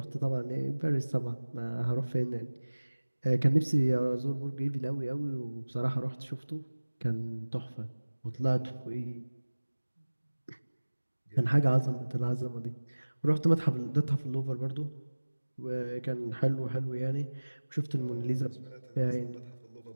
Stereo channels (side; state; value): both; inverted; correlation -1.00